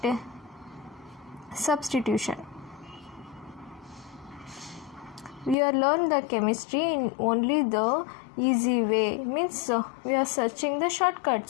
Substitution. We are learn the chemistry in only the easy way, means we are searching the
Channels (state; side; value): drops out; right; at 5.6 s